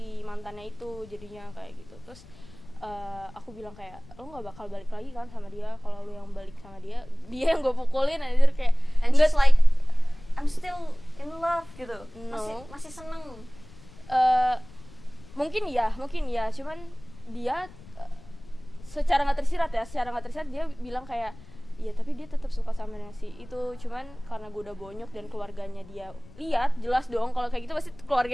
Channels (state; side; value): noise; left; rumble, 20 dB below the sound